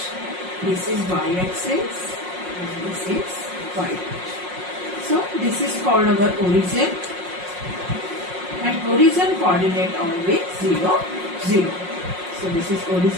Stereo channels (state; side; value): late; left; 5.5 ms